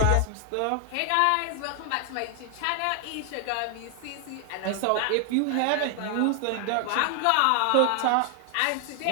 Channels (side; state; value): both; different; correlation 0.00